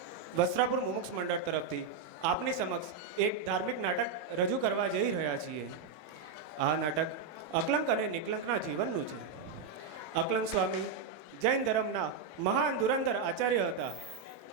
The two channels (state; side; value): quieter; left; 5.3 dB